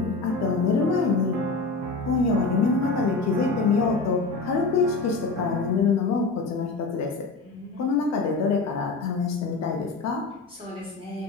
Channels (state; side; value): quieter; right; 3.8 dB